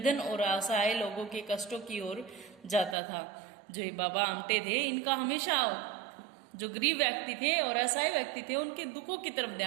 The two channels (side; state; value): left; drops out; at 3.0 s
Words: और असहाय लोगों के कष्टों की ओर जाता था। जो ये बाबा आमटे थे, इनका हमेशा जो गरीब व्यक्ति थे और असहाय व्यक्ति थे उनके दुखों की तरफ